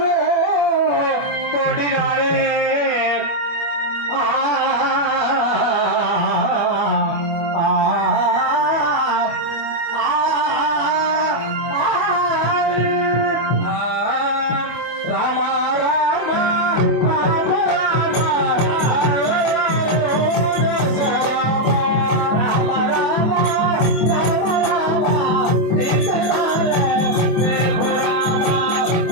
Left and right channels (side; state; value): right; late; 24 ms